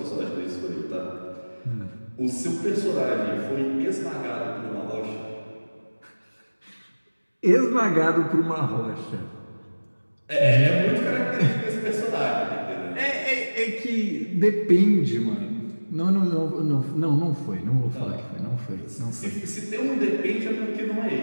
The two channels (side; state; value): both; inverted; correlation -1.00